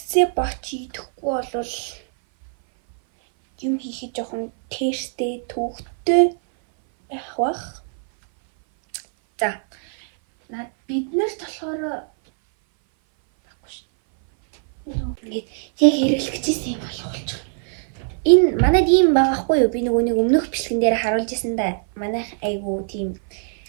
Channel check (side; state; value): left; silent; 59 dB below the other